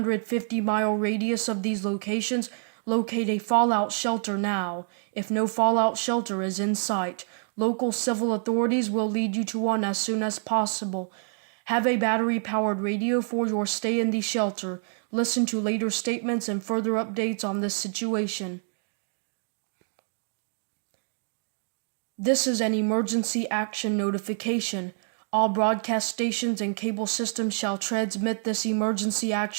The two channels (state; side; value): silent; left; 55 dB below the other